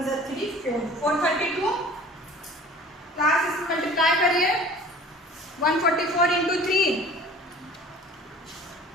जा 3 4, 432 क्लास. इसको मल्टीप्लाई करिए, 144 इंटू 3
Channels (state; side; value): normal; both; correlation 0.45